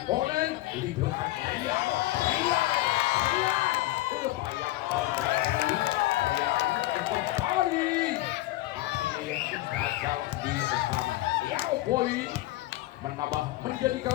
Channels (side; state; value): right; quieter; 17.4 dB